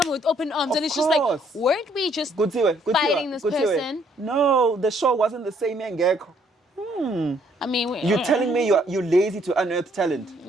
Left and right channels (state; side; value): normal; both; correlation 0.67